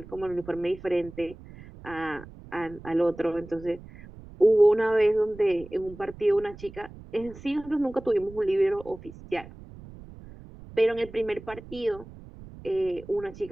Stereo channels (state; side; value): noise; right; rumble, 18 dB below the sound